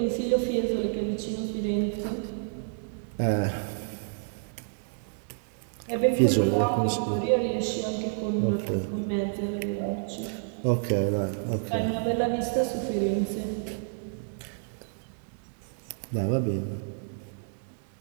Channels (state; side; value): silent; left; digital silence